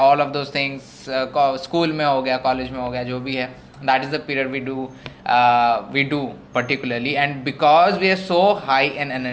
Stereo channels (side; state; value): both; identical; correlation 1.00